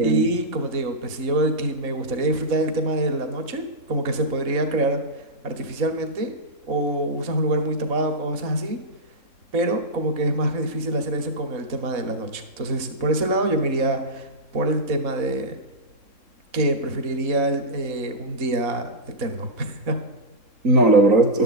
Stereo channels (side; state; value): left; late; 4.1 ms